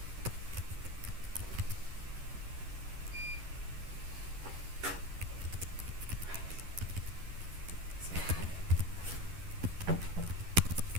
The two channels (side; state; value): left; late; 11 ms